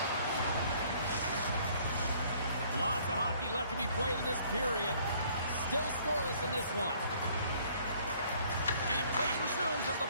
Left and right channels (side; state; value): both; inverted; correlation -0.60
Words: of hockey left to be played in this period. Still scoreless in this one. And play resumes as the